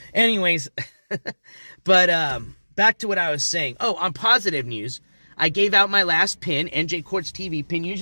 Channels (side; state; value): both; inverted; correlation -1.00